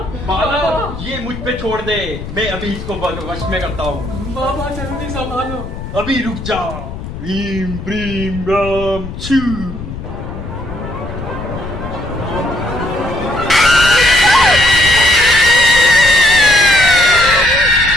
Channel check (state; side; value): noise; left; rumble, 10 dB below the sound